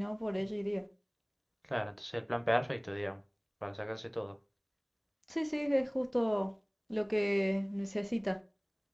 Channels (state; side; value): identical; both; correlation 1.00